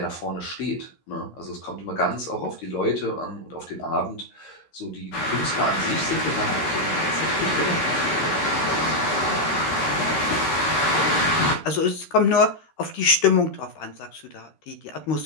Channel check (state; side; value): late; right; 13 ms